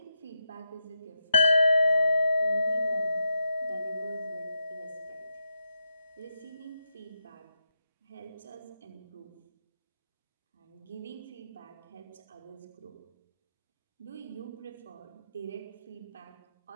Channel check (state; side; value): inverted; both; correlation -0.85